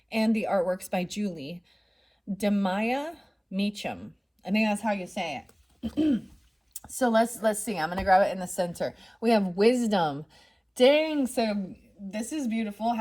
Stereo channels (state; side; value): identical; both; correlation 1.00